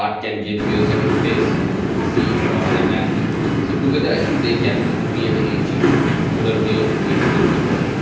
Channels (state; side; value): identical; both; correlation 1.00